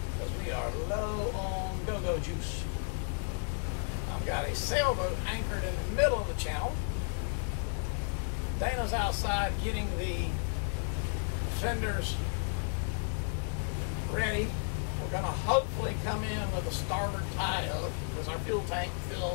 because we are low on go-go juice. I've got a sailboat anchored in the middle of the channel. Dana's outside getting the fenders ready. We're gonna hopefully come in with a starboard tie-up because our fuel tank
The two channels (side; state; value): right; silent; 56 dB below the other